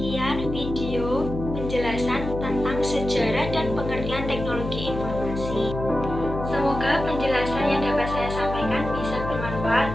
video penjelasan tentang sejarah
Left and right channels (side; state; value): left; noise; hum, 6 dB below the sound